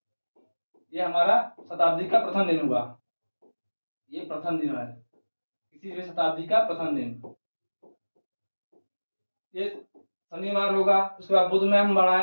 ये हमारा शताब्दी का प्रथम दिन हुआ। ये प्रथम दिन है किसी भी शताब्दी का प्रथम दिन, ये शनिवार होगा। उसके बाद बुध में हम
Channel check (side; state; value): both; inverted; correlation -1.00